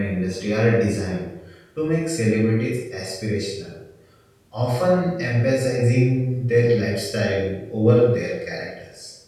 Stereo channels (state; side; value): identical; both; correlation 1.00